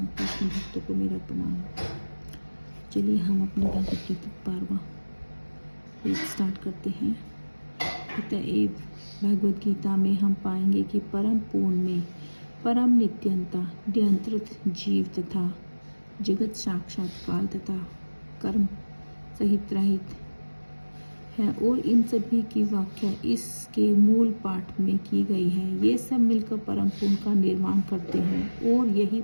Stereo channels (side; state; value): both; inverted; correlation -1.00